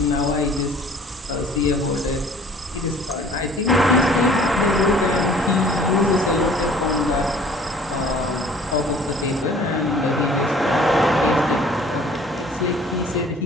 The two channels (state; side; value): normal; both; correlation 0.52